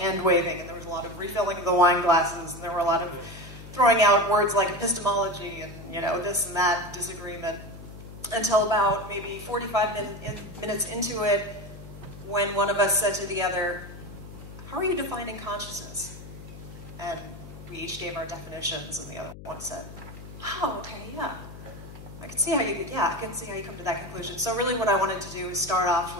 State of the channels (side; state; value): left; noise; hum, 14 dB below the sound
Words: waving, and there was a lot of refilling of the wine glasses, and there were a lot of throwing out words like epistemology and, this and that disagreement. Until about maybe 45 minutes into it, when one of us said to the other, how are you defining consciousness? And we each gave our definitions, and the other one said, oh, okay, yeah. I can see how you come to that conclusion. So really what I wanted to do is start off